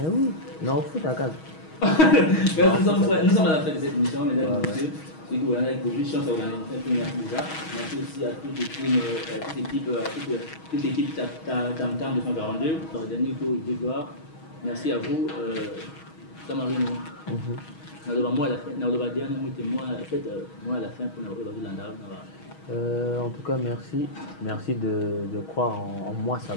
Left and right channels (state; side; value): late; right; 6.3 ms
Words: oui, non, faut d'accord. Nous sommes à la fin de cette émission, mesdames et messieurs. C'est que vous avez une chance à organiser une première déjà. Merci aussi à toute l'équipe Tam Tam 242 pour le dernier tour de gloire. Merci à vous, Samarino. Moi à la fin, en tout cas, merci de croire en moi,